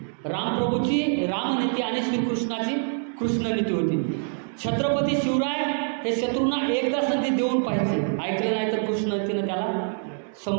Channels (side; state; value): left; silent; 62 dB below the other